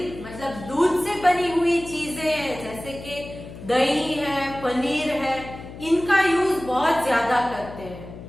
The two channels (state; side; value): noise; left; hum, 14 dB below the sound